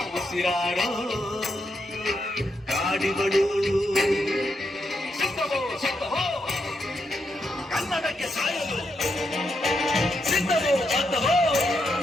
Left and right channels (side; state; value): both; normal; correlation 0.82